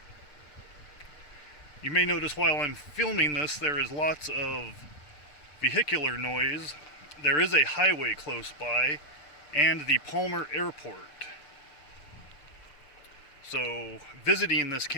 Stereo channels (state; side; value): late; right; 6.7 ms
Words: You may notice while I'm filming this, there is lots of vehicular noise. There is a highway close by, and the Palmer Airport. So, visiting this